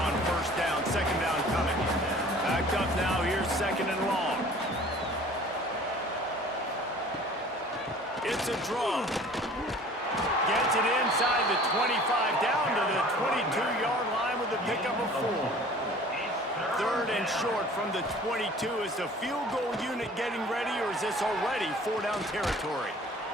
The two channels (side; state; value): both; normal; correlation 0.48